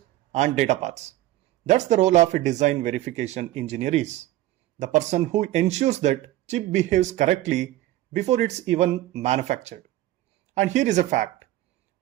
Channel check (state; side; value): quieter; left; 15.3 dB